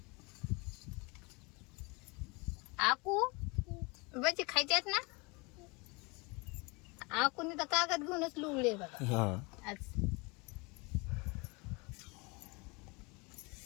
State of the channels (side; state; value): right; quieter; 28.1 dB